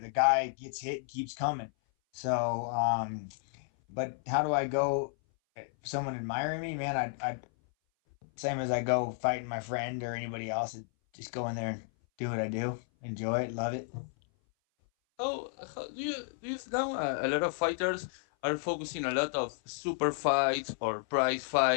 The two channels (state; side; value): silent; right; 56 dB below the other